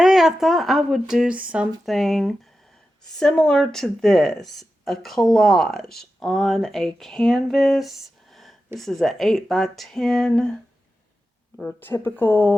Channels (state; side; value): normal; both; correlation 0.92